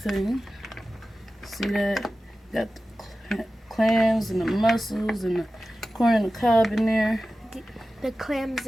See that? Got the clams and the mussels and the corn and the cob in there. The clams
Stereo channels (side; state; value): both; normal; correlation 0.95